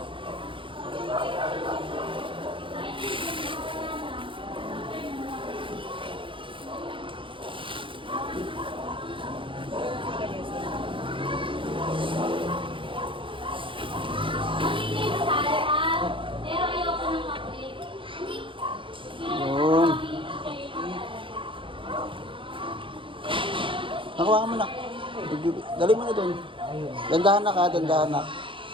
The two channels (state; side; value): late; left; 0.25 ms